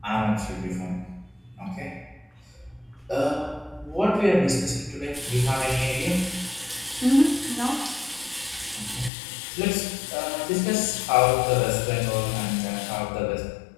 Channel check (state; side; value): drops out; right; at 9.1 s